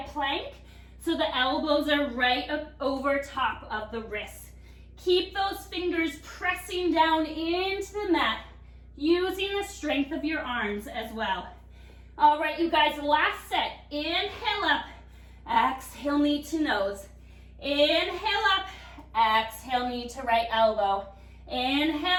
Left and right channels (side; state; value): both; identical; correlation 1.00